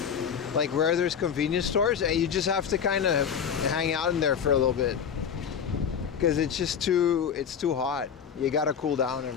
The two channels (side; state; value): right; quieter; 7.6 dB